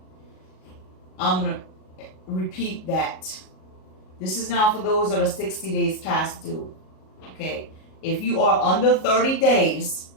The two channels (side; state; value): right; late; 38 ms